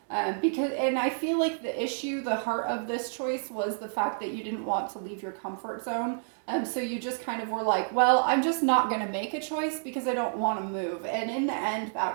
And I feel like the issue, the heart of this choice was the fact that you didn't want to leave your comfort zone. So you just kind of were like, well, I'm just not going to make a choice because I don't want to move. And in the end,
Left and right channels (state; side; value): silent; left; digital silence